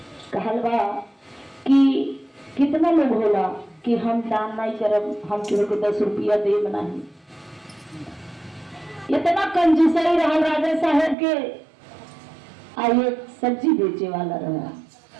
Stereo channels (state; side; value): drops out; left; at 11.2 s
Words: कहलवा कि कितना लोग होला कि हम दान नहीं करब, हम केहू को 10 रुपया देब नहीं। इतना कंजूसई रहा राजा साहेब के। आइए सब्जी बेचे वाला रहा।